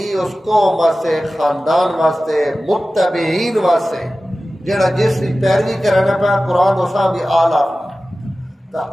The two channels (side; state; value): both; normal; correlation 0.96